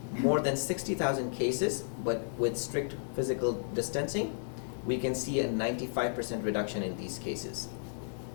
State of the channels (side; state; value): right; silent; digital silence